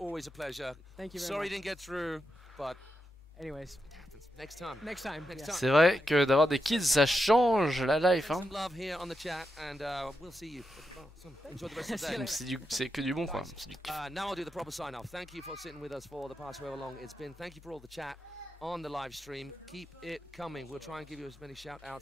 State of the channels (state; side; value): normal; both; correlation 0.85